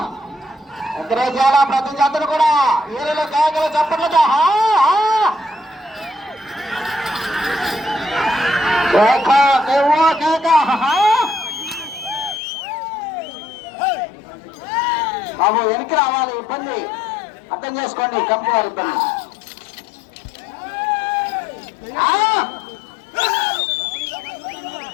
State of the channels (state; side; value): drops out; right; at 12.4 s